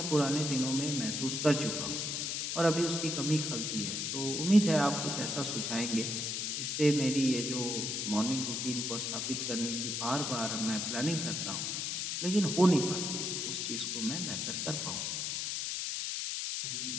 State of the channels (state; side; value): noise; left; hiss, 1 dB below the sound